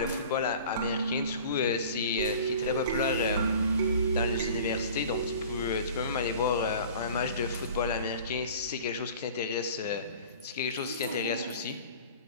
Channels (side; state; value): both; inverted; correlation -0.43